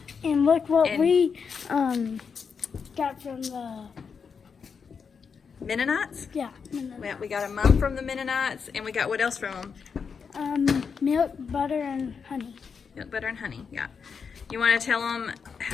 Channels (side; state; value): right; quieter; 6.0 dB